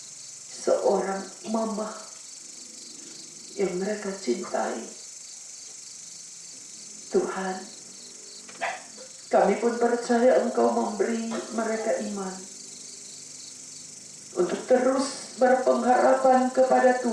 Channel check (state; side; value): identical; both; correlation 1.00